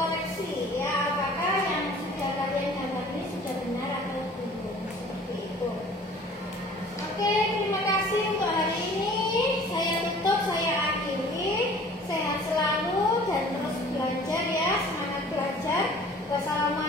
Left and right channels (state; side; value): normal; both; correlation 0.49